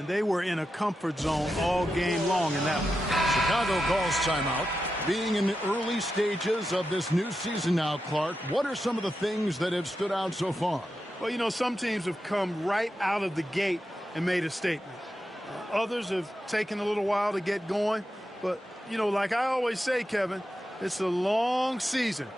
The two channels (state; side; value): normal; both; correlation 0.89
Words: they were in a comfort zone all game long in that one. Chicago calls timeout. Being in the early stages of this new season now, Clark, what are some of the things that have stood out so far? Well, you know, some teams have come right out of the gate and made a statement. Others have taken a little while to get going. But, you know, like I always say, Kevin, it's a long season.